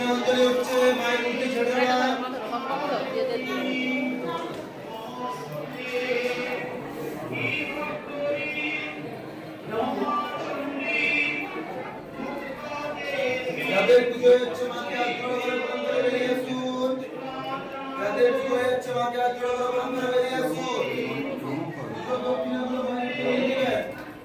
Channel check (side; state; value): both; identical; correlation 1.00